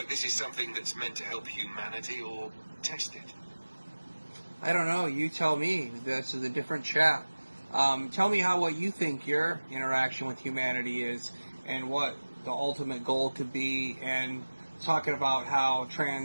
this is something that's meant to help humanity or test it? I don't know, you tell me. This is a different chat. Tell me what you think your interaction with humanity is and what the ultimate goal could be, and talking about how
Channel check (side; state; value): both; inverted; correlation -1.00